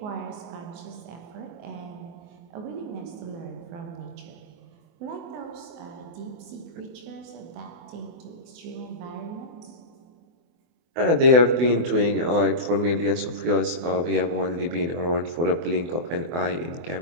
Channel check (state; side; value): late; left; 24 ms